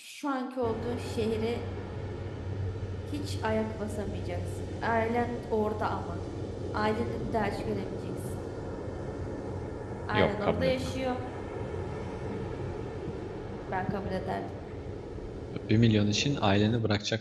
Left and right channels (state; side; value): identical; both; correlation 1.00